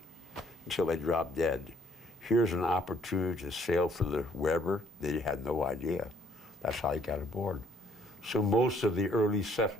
until they drop dead. Here's an opportunity to sail for the Weber. They had no idea. That's how they got aboard. So most of the early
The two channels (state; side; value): normal; both; correlation 0.64